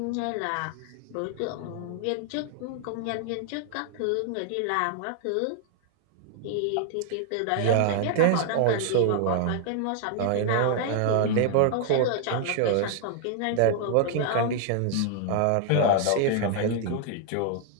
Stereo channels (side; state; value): both; different; correlation 0.00